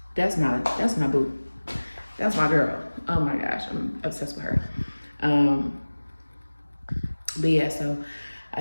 That's my boo. That's my girl. Oh my gosh, I'm obsessed with her. But yeah, so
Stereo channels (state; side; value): inverted; both; correlation -1.00